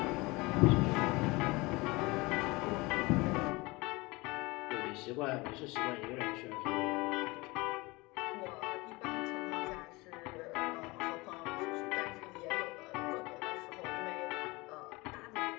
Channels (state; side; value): quieter; right; 23.6 dB